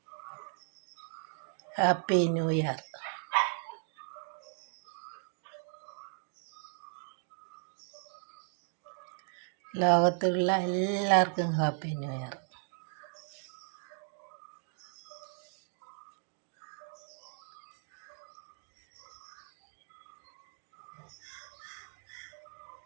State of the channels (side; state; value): left; silent; 53 dB below the other